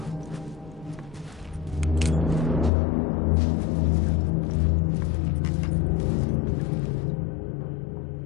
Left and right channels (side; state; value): right; drops out; at 2.7 s